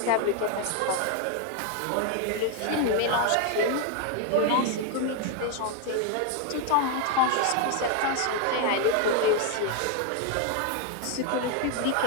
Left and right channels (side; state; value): both; different; correlation 0.01